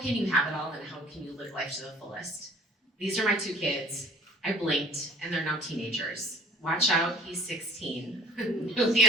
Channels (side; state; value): both; normal; correlation 0.51